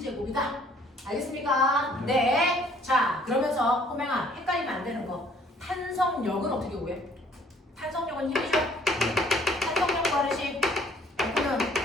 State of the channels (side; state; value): both; normal; correlation 0.59